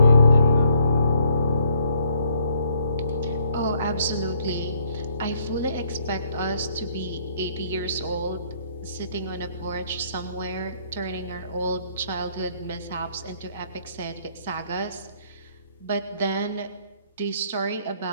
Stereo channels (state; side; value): inverted; both; correlation -0.66